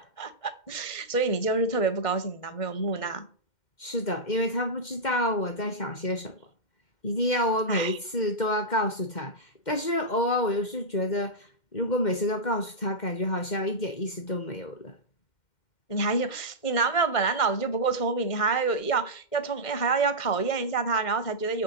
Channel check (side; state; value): right; late; 2.1 ms